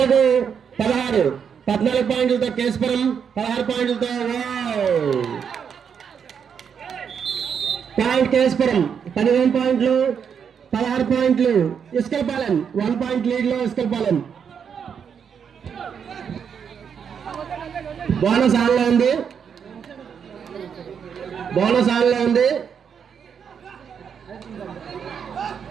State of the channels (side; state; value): left; quieter; 7.2 dB